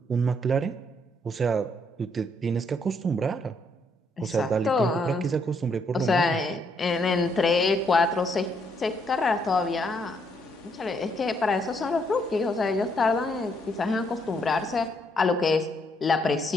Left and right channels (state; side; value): normal; both; correlation 0.73